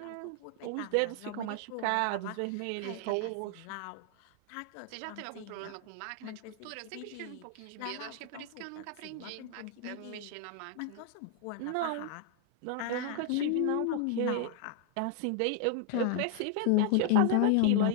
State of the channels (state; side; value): different; both; correlation 0.00